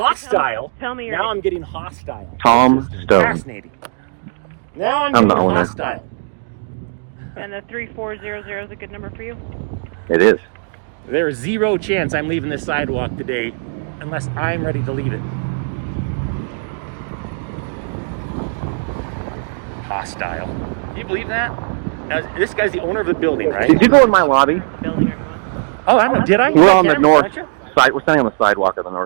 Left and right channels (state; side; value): silent; left; digital silence